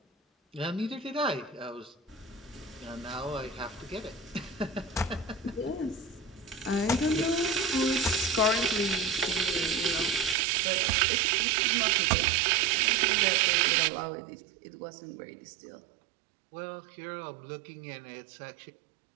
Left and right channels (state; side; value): drops out; left; at 10.4 s